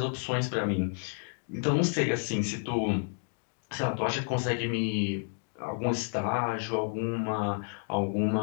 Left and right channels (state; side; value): silent; right; 57 dB below the other